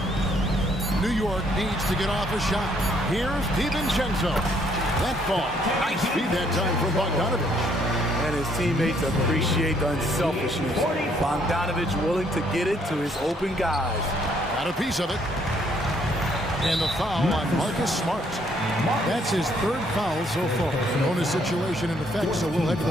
New York needs to get off a shot. Here's DiVincenzo. That ball. Nice feed that time from Bogdanovich. and his teammates appreciate the unselfishness. Bogdanovich willing to get it to his open guys. Got a piece of it. And the foul on Marcus Smart. That's his third foul so far. Bonus situation in effect, so we'll head to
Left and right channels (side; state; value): both; normal; correlation 0.67